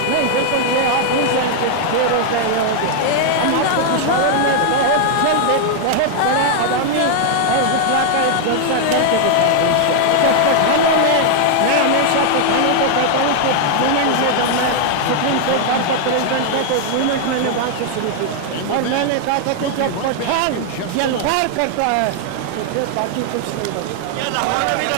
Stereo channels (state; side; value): different; both; correlation 0.00